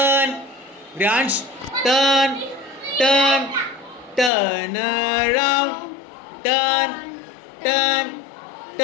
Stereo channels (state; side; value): drops out; right; at 4.3 s